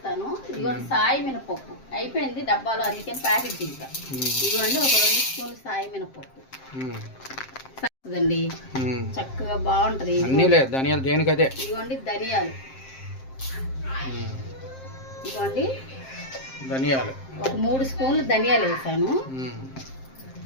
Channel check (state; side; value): late; right; 7.6 ms